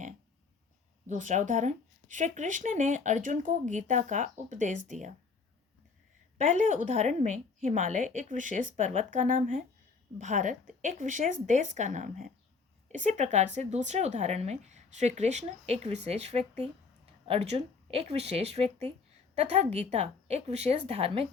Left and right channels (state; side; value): quieter; right; 4.8 dB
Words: दूसरा उदाहरण, श्री कृष्ण ने अर्जुन को गीता का उपदेश दिया। पहले उदाहरण में हिमालय एक विशेष पर्वत का नाम है, भारत एक विशेष देश का नाम है। इसी प्रकार से दूसरे उदाहरण में श्री कृष्ण एक विशेष व्यक्ति, अर्जुन एक विशेष व्यक्ति तथा गीता एक विशेष धार्मिक